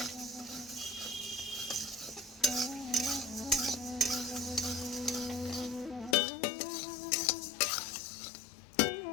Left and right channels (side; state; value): right; drops out; at 6.2 s